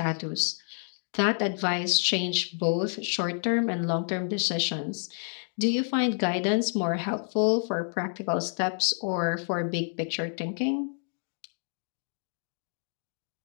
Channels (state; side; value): silent; right; 59 dB below the other